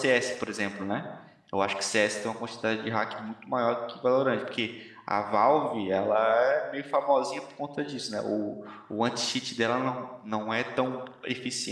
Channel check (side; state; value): both; identical; correlation 1.00